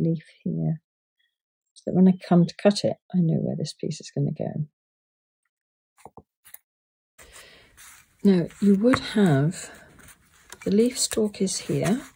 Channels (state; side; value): identical; both; correlation 1.00